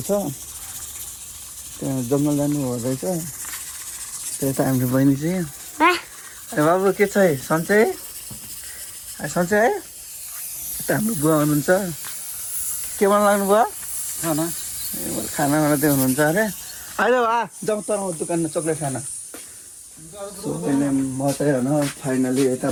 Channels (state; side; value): identical; both; correlation 1.00